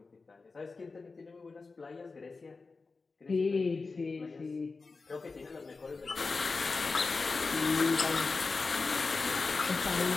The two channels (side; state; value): right; quieter; 4.1 dB